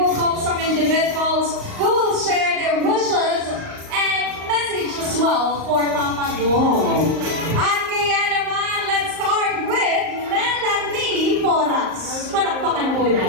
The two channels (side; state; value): left; late; 38 ms